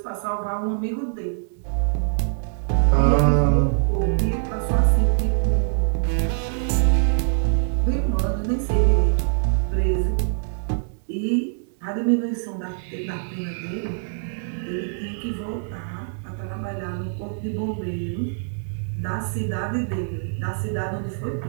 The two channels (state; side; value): silent; left; digital silence